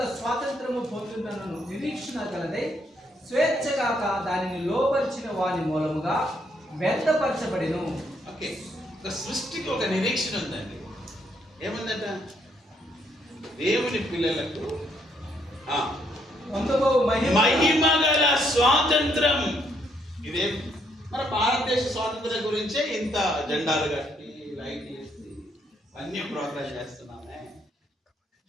స్వాతంత్రము పొందుతున్న నిరీక్షణ కలదై స్వేచ్ఛగాక దానిని లోపరిచిన వాని మూలముగా వ్యర్థపరచబడిను. ఓకే, సృష్టికి ఒక నిరీక్షణ ఉందండి. ఏముందట? దేవుని పిల్లలకు పొందుకో మహిమ గల స్వాతంత్రం. ఇదే మన భారతదేశ స్వాతంత్రం గురించే ఇంత జెండాలు కట్టి లైట్ వేసి అన్ని ప్రోగ్రామ్ చేస్తున్నామే.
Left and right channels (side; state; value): both; normal; correlation 0.72